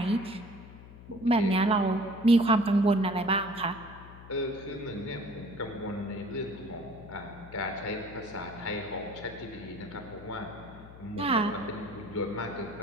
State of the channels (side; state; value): left; noise; hum, 17 dB below the sound